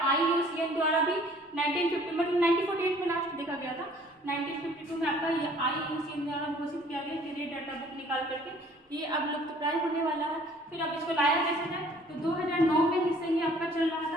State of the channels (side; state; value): both; normal; correlation 0.55